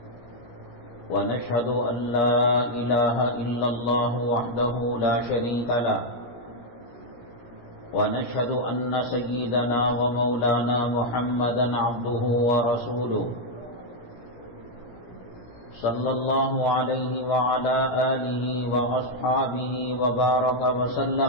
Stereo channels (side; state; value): right; late; 17 ms